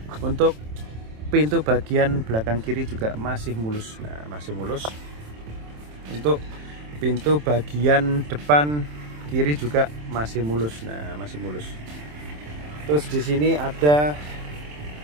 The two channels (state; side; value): late; left; 27 ms